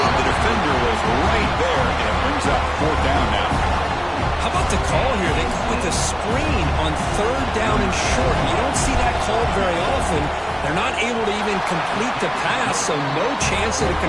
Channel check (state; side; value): identical; both; correlation 1.00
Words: The defender was right there, and it brings up fourth down now. How about the call here? They go with a screen on third down and short. You don't see that called very often. They're not able to even complete the pass, so no chance at a